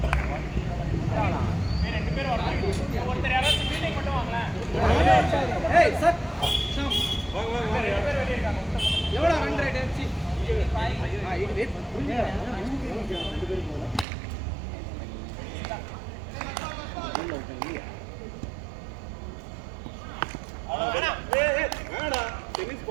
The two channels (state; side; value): drops out; left; at 14.1 s